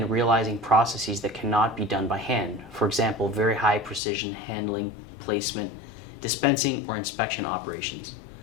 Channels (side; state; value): right; drops out; at 4.0 s